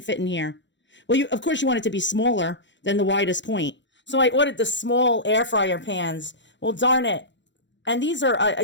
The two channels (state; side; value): late; right; 0.53 ms